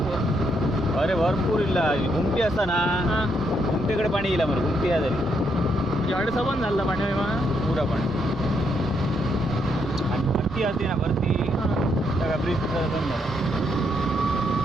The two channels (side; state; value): both; normal; correlation 0.76